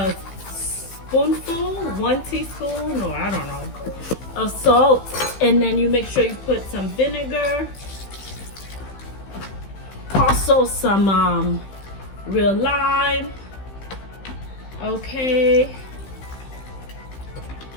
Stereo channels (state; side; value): late; right; 15 ms